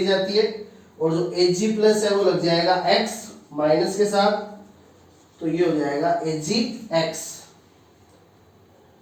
जाती है, और जो Ag प्लस है वो लग जाएगा X माइनस के साथ, तो ये हो जाएगा AgX।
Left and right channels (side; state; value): both; identical; correlation 1.00